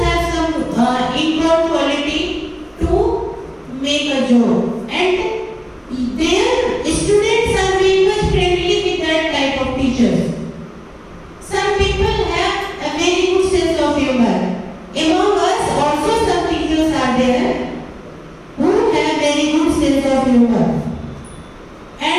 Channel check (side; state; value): both; identical; correlation 1.00